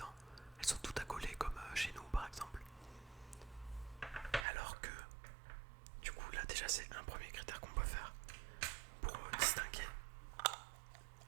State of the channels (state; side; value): drops out; left; at 4.5 s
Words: Elles sont toutes accolées comme chez nous par exemple. Alors que du coup là déjà c'est un premier critère qu'on peut faire pour distinguer